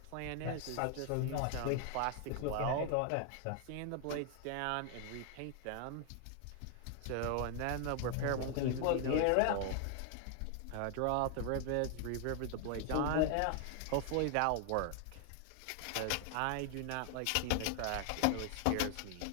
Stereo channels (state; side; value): different; both; correlation 0.00